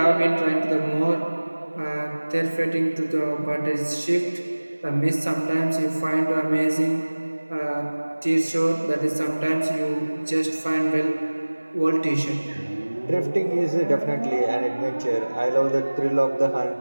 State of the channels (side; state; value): both; inverted; correlation -1.00